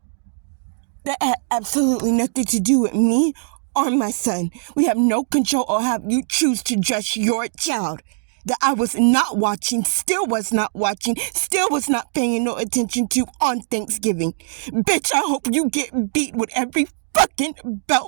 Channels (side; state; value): left; silent; digital silence